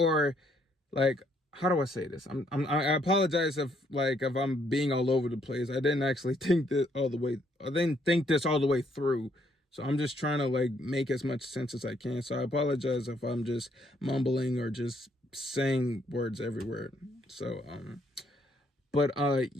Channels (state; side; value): normal; both; correlation 0.70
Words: like, how do I say this? I apologize if I'm being all over the place. I didn't actually think this all the way. I didn't think this all the way through. So I'm just trying to like make as much sense as I can. So I apologize if I'm just mumbling or just saying words everywhere. So but